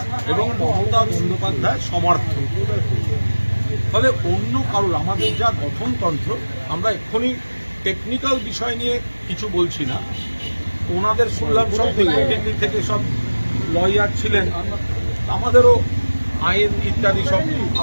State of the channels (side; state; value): both; inverted; correlation -1.00